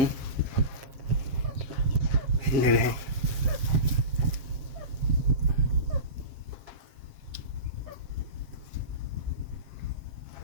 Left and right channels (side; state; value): left; late; 7.5 ms